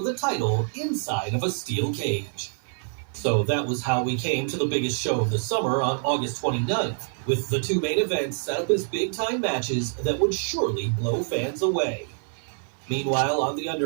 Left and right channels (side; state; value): left; silent; 61 dB below the other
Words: the title inside of a steel cage. So that was how we came to the biggest show of the summer on August 29th, with the two main events set up as big-time matches that would surely blow fans away. Meanwhile, on the